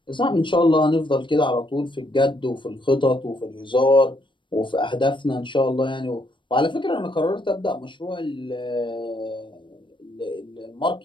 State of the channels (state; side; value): late; right; 0.24 ms